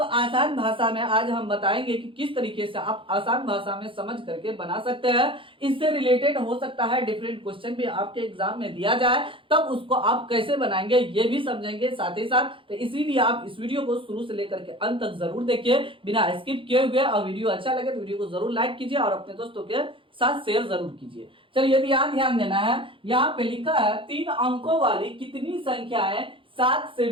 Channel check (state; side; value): late; left; 0.25 ms